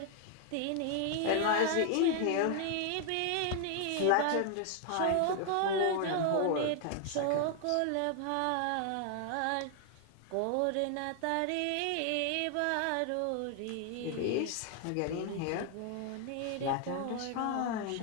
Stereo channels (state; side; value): different; both; correlation 0.00